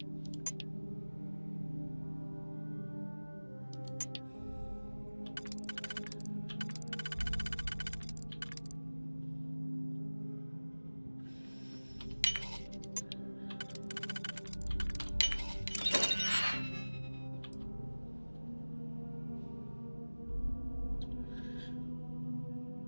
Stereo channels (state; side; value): inverted; both; correlation -1.00